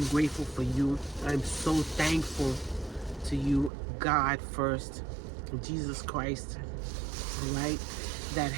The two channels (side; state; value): left; drops out; at 3.7 s